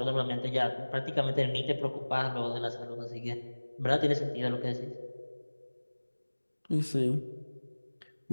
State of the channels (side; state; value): both; inverted; correlation -1.00